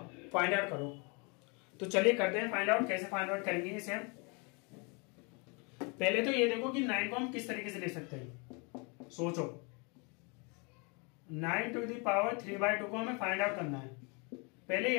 फाइंड आउट करो। तो चलिए करते हैं फाइंड आउट। कैसे फाइंड आउट करेंगे इसे हम। पहले तो ये देखो कि 9 को हम किस तरीके से लिख सकते हैं। सोचो 9 to the power 3/2 को हमें फाइंड आउट करना है। पहले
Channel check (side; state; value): right; quieter; 32.0 dB